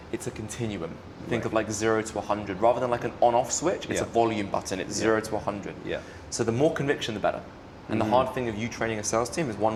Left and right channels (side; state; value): both; identical; correlation 1.00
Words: it's a continuum. Think of like 0 to 100. Rather than like an on-off switch, it's a volume button. It's 0 to 100. Yeah. So the more conviction, the better. And the hard thing of you training a sales team is